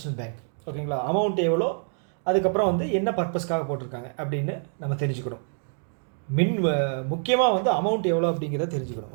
Bank. ஓகேங்களா, அமௌண்ட் எவ்வளோ, அதுக்கப்புறம் வந்து என்ன பர்பஸ்க்காக போட்டிருக்காங்க அப்படின்னு நம்ம தெரிஞ்சுக்கணும். முக்கியமாக வந்து அமௌண்ட் எவ்வளோ அப்படிங்கிறத தெரிஞ்சுக்கணும்.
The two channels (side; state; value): left; silent; 61 dB below the other